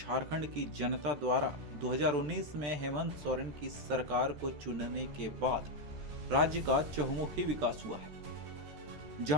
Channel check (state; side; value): late; left; 13 ms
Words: की जनता द्वारा 2019 में हेमंत सोरेन की सरकार को चुनने के बाद राज्य का चहुमुखी विकास हुआ है।